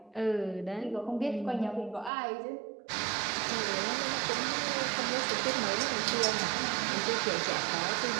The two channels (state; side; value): drops out; left; at 2.1 s